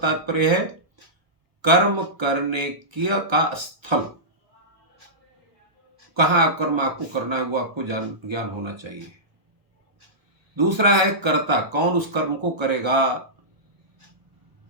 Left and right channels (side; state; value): left; late; 1.3 ms